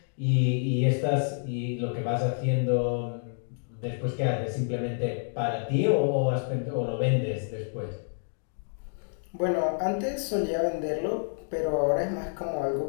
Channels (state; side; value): silent; right; digital silence